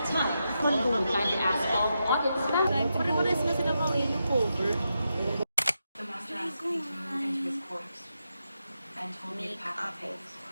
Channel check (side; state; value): both; inverted; correlation -0.86